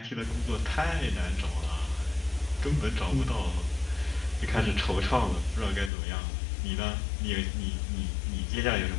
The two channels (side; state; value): right; drops out; at 5.9 s